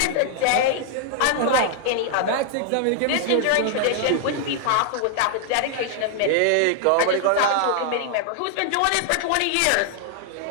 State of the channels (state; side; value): different; both; correlation 0.00